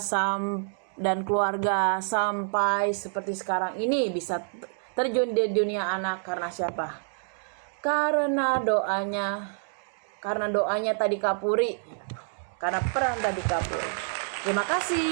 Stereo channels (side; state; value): left; silent; digital silence